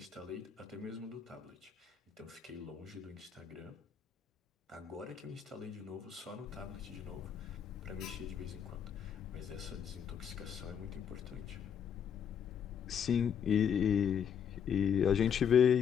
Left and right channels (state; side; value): quieter; right; 7.9 dB